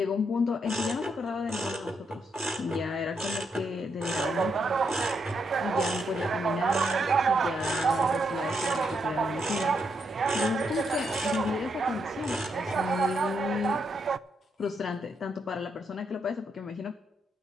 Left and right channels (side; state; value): both; normal; correlation 0.78